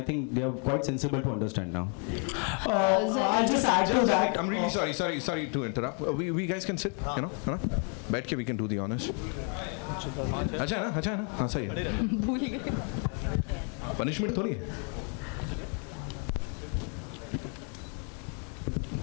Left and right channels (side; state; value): right; quieter; 40.0 dB